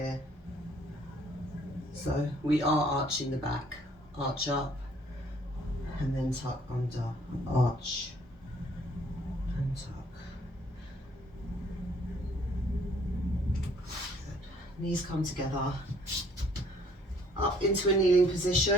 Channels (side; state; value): both; normal; correlation 0.60